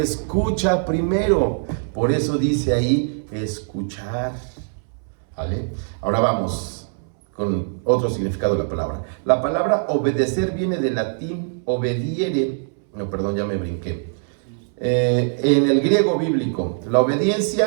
primero. Por eso dice ahí, escuchar. ¿Vale? Ahora vamos con otro significado de la palabra. La palabra obedecer viene del latín obediere. No, perdón, ya me brinqué. En el griego bíblico, la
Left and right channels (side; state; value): left; silent; 63 dB below the other